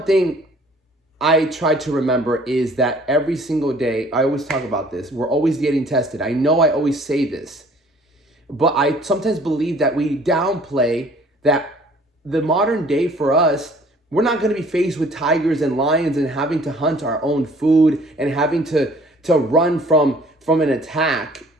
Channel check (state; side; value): normal; both; correlation 0.55